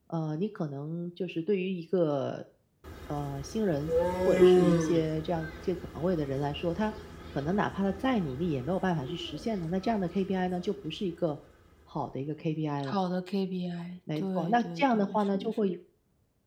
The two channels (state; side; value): identical; both; correlation 1.00